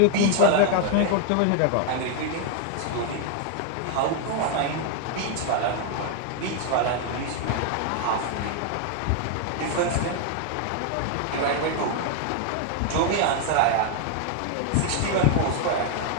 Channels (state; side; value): different; both; correlation 0.00